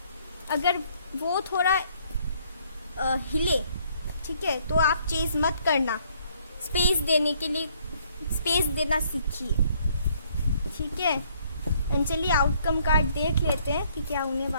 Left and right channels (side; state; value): both; inverted; correlation -0.65